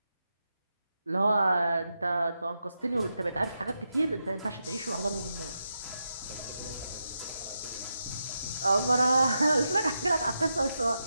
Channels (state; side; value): inverted; both; correlation -0.87